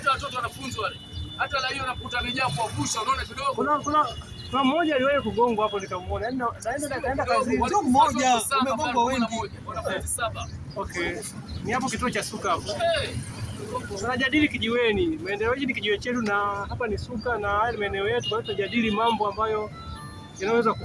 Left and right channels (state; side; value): identical; both; correlation 1.00